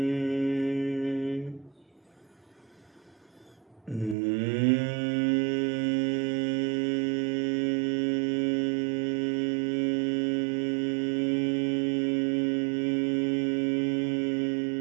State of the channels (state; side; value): drops out; left; at 4.2 s